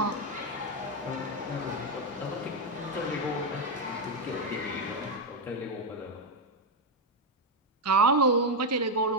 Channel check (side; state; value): both; normal; correlation 0.05